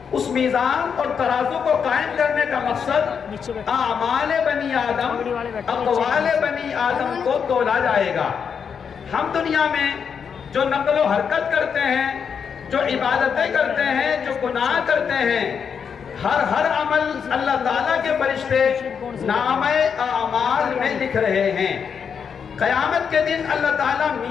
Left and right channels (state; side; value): quieter; right; 6.8 dB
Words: اس میزان اور ترازو کو قائم کرنے کا مقصد اعمال بنی آدم، اقوال بنی آدم کو تولا جائے گا۔ ہم دنیا میں جو نقل و حرکت کرتے ہیں، جو عبادتیں کرتے ہیں، جو گناہ کرتے ہیں، ہر عمل اللہ تعالیٰ کے فرشتے نامہ اعمال میں لکھ رہے ہیں۔ قیامت کے دن اللہ تعالیٰ